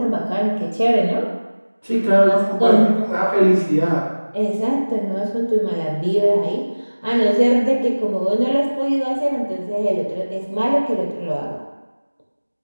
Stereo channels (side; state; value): both; inverted; correlation -1.00